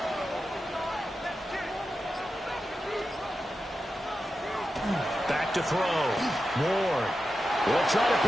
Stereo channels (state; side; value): normal; both; correlation 0.90